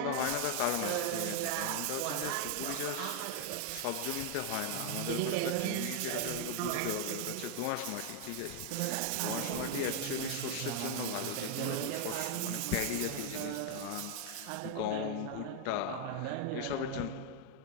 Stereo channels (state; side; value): different; both; correlation 0.00